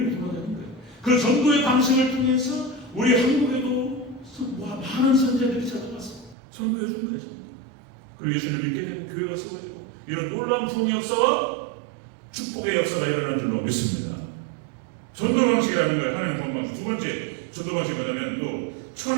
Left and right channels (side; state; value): left; drops out; at 6.4 s